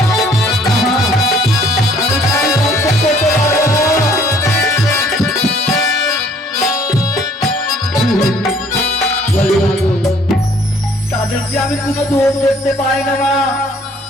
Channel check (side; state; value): both; normal; correlation 0.59